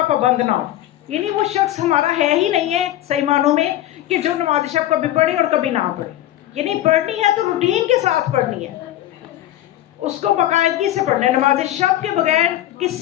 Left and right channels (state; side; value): quieter; right; 13.6 dB